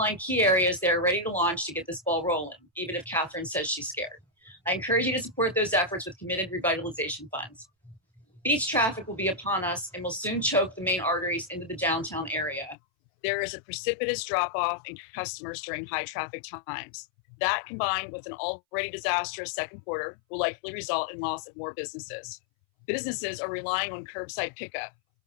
key areas they are ready to launch to get this ball rolling, even if Katherine says she's scared. I encourage you to support those efforts with committed revitalization funds. Beach traffic will be upon us and will soon choke the main arteries into the downtown area. There is a precipitous drop-off in customers during high traffic times. That, combined with an already disastrous second quarter, will likely result in loss of more businesses. Businesses are relying on curbside pickup.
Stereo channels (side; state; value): right; drops out; at 12.8 s